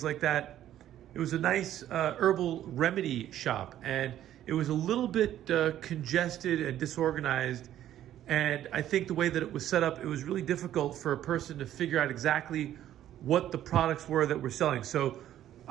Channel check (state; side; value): quieter; left; 12.0 dB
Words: like that. It was a nice herbal remedy shop, and it was a little bit congested and disorganized. And I think the way that it was set up, it was really difficult for a person to figure out exactly what the products were that we're selling. So